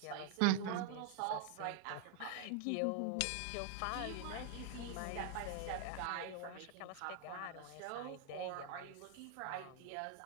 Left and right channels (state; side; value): different; both; correlation 0.00